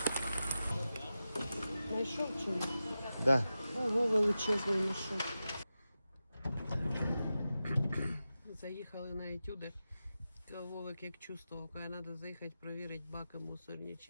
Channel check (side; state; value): both; inverted; correlation -0.92